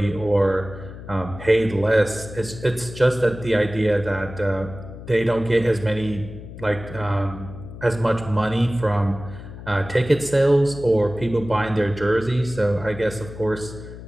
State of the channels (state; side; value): noise; left; hum, 13 dB below the sound